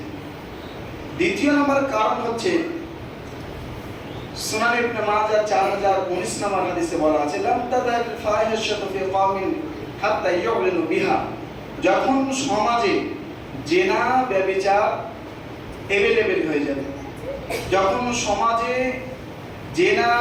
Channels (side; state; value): both; identical; correlation 1.00